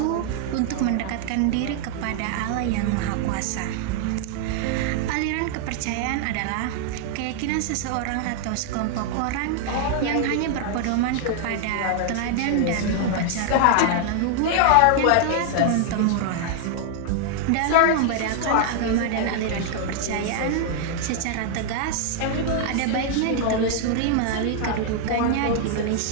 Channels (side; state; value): both; different; correlation 0.00